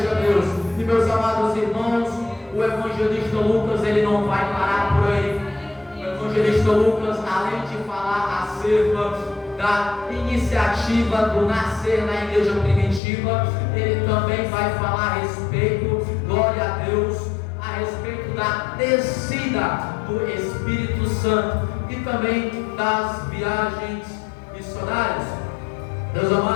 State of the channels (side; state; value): right; drops out; at 13.0 s